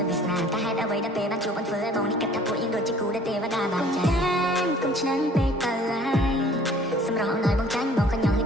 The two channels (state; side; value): normal; both; correlation 0.53